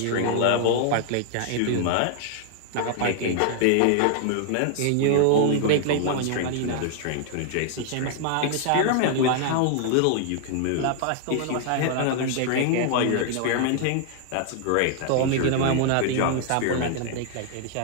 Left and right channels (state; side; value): different; both; correlation 0.00